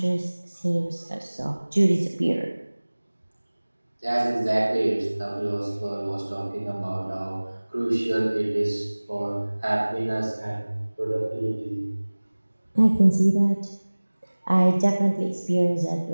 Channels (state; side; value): inverted; both; correlation -1.00